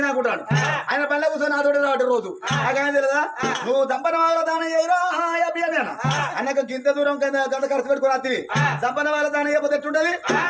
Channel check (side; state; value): both; identical; correlation 1.00